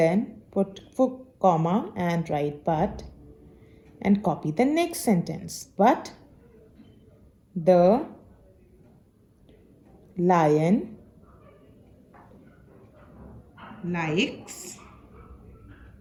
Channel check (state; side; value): identical; both; correlation 1.00